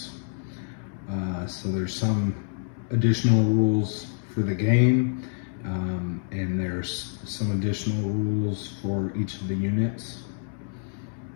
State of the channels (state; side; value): silent; right; 60 dB below the other